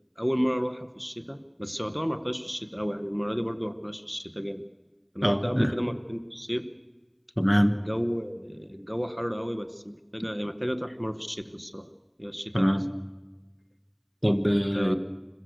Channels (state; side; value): identical; both; correlation 1.00